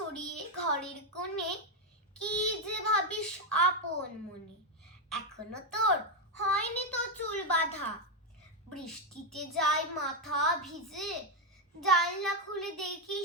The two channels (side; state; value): both; normal; correlation 0.04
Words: ঘরের কোণে কি যে ভাবিস আপন মনে। এখনো তোর হয়নি তো চুল বাঁধা, বৃষ্টিতে যায় মাথা ভিজে। জানলা খুলে